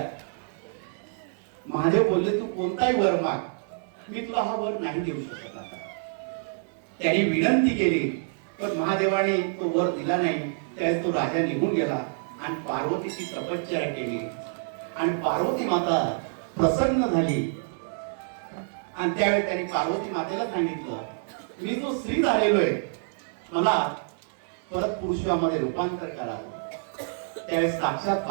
महादेव बोलले, तू कोणताही वर माग, मी तुला हा वर नाही देऊ शकत. आता त्याने विनंती केली पण महादेवाने तो वर दिला नाही. त्यावेळेस तो राजा निघून गेला आणि पार्वतीची तपश्चर्या केली. आणि पार्वती माता प्रसन्न झाली. आणि त्यावेळी त्यांनी पार्वती मातेला सांगितलं, मी जो स्त्री झालेलो आहे, मला परत पुरुषामध्ये रूपांतर करा. त्यावेळेस साक्षात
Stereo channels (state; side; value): silent; left; digital silence